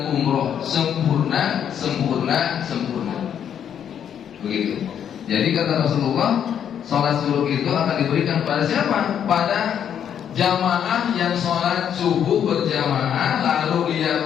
umroh, sempurna. Begitu. Jadi kata Rasulullah, sholat zuhur itu akan diberikan pada siapa? Pada jamaah yang sholat subuh berjamaah lalu dia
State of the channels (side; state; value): right; quieter; 8.9 dB